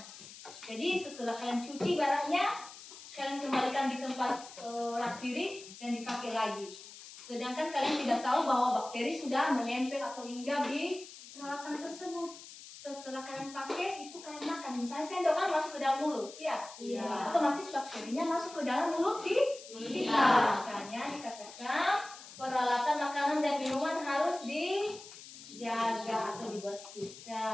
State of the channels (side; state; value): left; noise; hiss, 16 dB below the sound